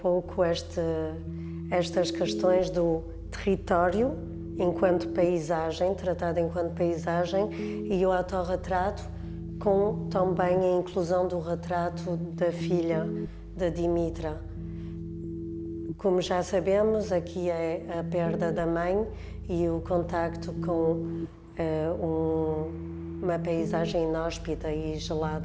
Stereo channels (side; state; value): both; identical; correlation 1.00